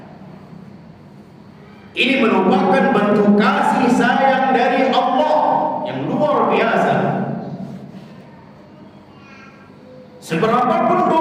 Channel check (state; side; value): identical; both; correlation 1.00